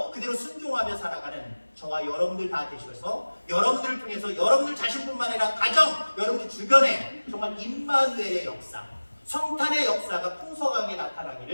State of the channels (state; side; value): inverted; both; correlation -1.00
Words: 그대로 순종하며 살아가는 저와 여러분들 다 되셔서 여러분들을 통해서 여러분들 자신뿐만 아니라 가정, 여러분들 주변에 정말 임마누엘의 역사, 성탄의 역사가 풍성하게